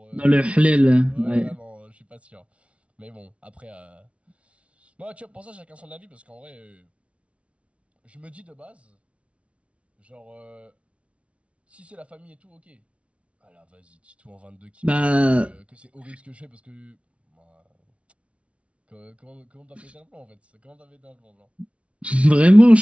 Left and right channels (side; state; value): left; late; 0.062 ms